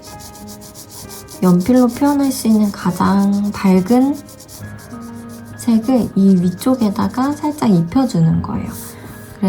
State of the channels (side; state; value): both; identical; correlation 1.00